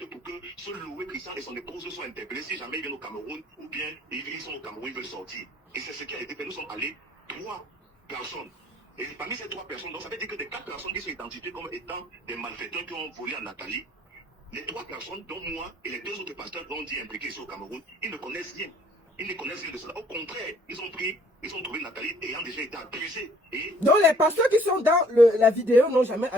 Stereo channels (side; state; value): both; normal; correlation 0.59